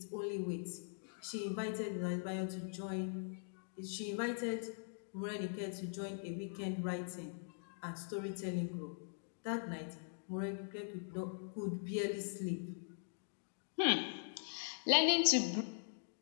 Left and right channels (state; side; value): silent; right; digital silence